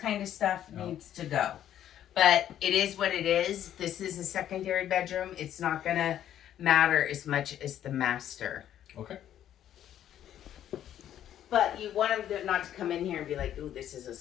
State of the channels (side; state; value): right; quieter; 11.0 dB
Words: of stuff Yeah. needs to go. But it is what it is. This is a secondary bedroom. It's not gonna matter as much as the master. Okay. But you want them to, not to come in here and be like, ooh, this is a